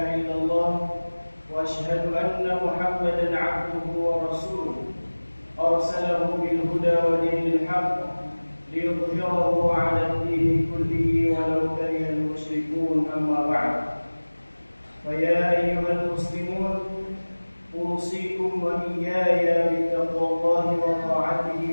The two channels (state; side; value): inverted; both; correlation -1.00